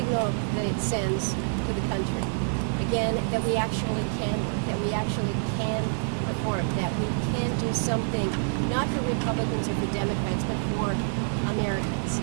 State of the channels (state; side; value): silent; left; digital silence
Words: that it sends to the country. Again, that we actually can work, that we actually can perform, that we can do something, not for Republicans or for Democrats, but for Americans.